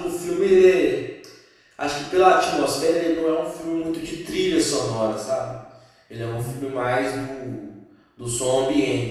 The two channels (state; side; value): identical; both; correlation 1.00